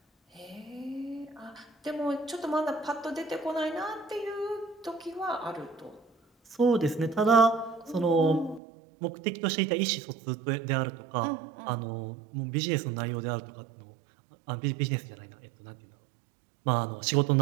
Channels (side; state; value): left; drops out; at 8.6 s